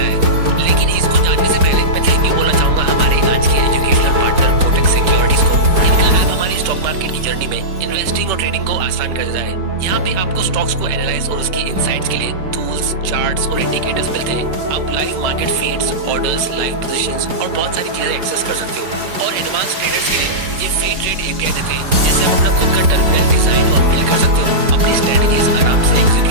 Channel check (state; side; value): late; left; 4.8 ms